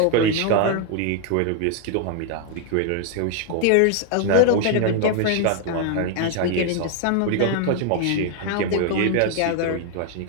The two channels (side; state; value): both; different; correlation 0.00